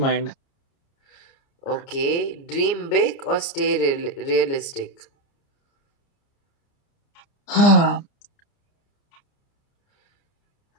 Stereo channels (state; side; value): late; right; 30 ms